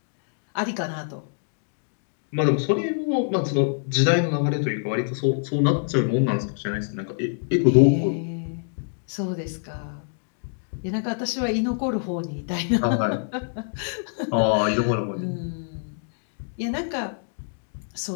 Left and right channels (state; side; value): silent; right; digital silence